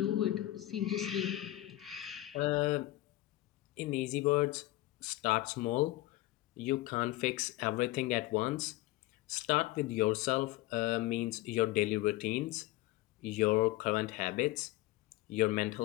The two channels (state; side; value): quieter; right; 17.2 dB